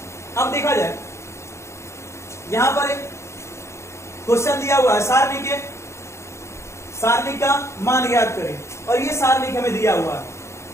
अब देखा जाए, यहां पर एक क्वेश्चन दिया हुआ है, सारणी का मान ज्ञात करें, और ये सारणी हमें दिया हुआ है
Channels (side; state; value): right; late; 0.13 ms